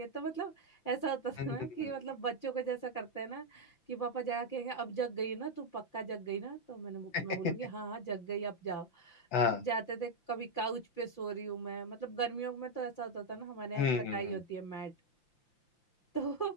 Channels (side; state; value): right; late; 5.8 ms